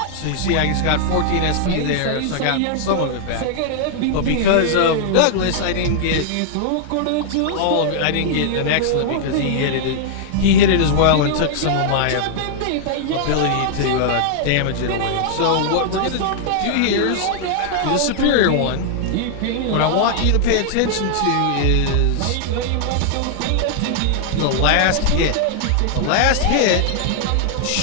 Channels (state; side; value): different; both; correlation -0.01